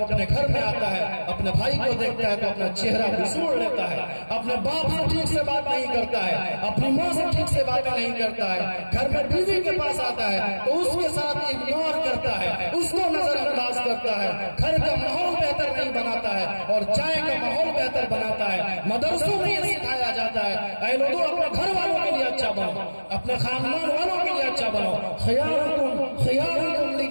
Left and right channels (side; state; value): both; inverted; correlation -1.00